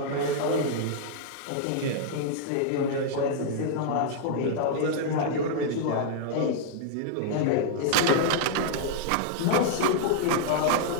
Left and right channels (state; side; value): different; both; correlation -0.01